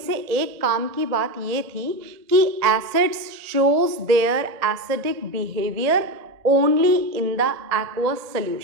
एक काम की बात ये थी कि acids shows their acidic behaviour only in the aqueous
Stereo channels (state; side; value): late; left; 1.7 ms